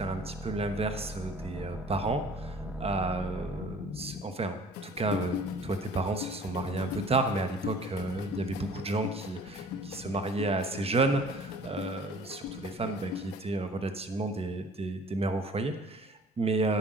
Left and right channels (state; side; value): normal; both; correlation 0.49